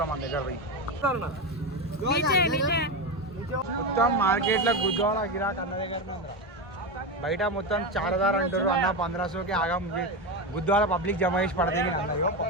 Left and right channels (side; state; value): both; normal; correlation 0.16